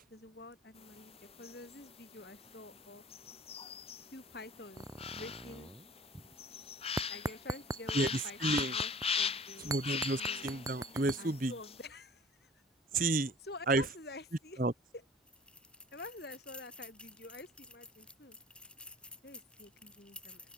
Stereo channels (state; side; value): normal; both; correlation 0.47